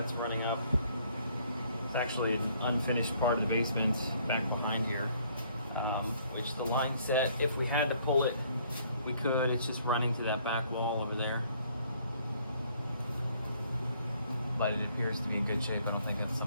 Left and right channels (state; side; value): inverted; both; correlation -0.63